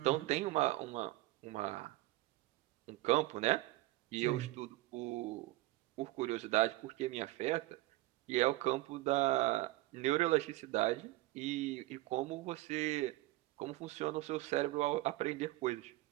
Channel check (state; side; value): quieter; left; 18.5 dB